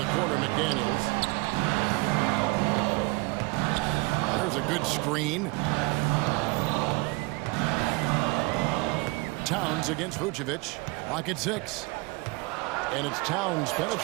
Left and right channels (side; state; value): left; quieter; 25.7 dB